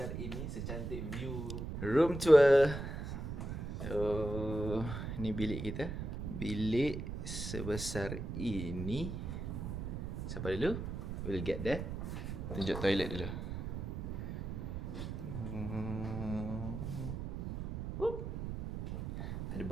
ini, secantik view room tour. So, ni bilik kita. Bilik sebesar ini. Siapa dulu? We'll get there. Tunjuk toilet dulu. Ada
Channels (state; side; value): noise; right; rumble, 5 dB below the sound